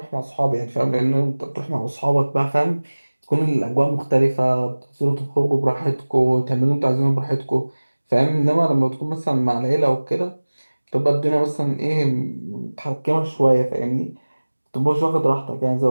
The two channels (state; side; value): inverted; both; correlation -1.00